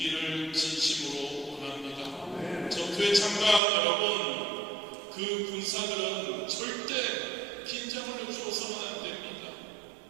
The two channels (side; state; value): left; drops out; at 3.6 s